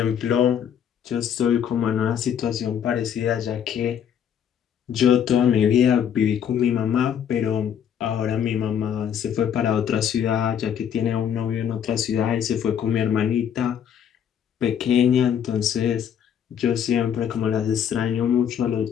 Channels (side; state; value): right; quieter; 8.7 dB